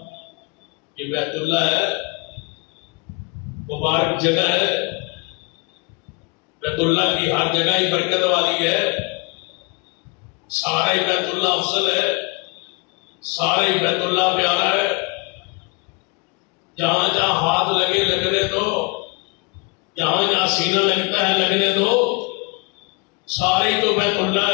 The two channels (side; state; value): right; quieter; 31.1 dB